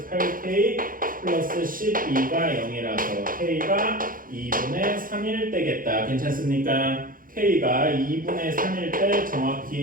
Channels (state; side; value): late; left; 0.40 ms